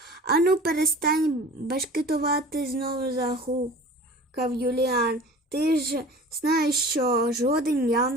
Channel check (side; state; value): both; normal; correlation 0.41